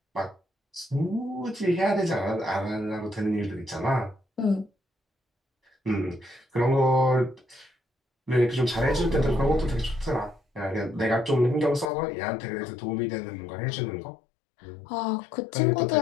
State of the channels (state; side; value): drops out; right; at 11.9 s